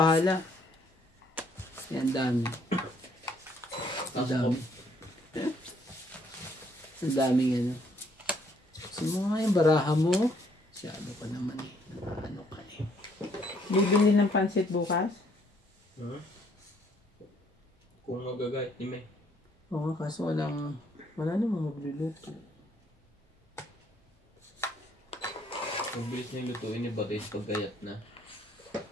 Yan, dami. Ang Tapos dami. Ang daming ano. Gusto mo nga yung baraha mo. Masyado ka naman eh. Ano ka eh. Bibili ng pansit bukas? Kung magagayat ni May. Oo nga, kaso wala namang magluluto. Mabilis na yung lutuin ni Batay pag gayat na.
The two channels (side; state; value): both; normal; correlation 0.66